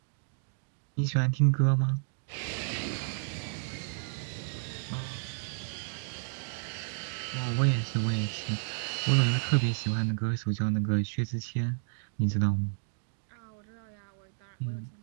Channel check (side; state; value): left; silent; digital silence